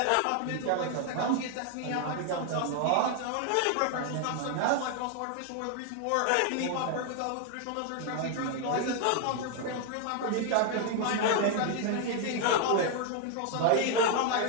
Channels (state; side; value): different; both; correlation 0.00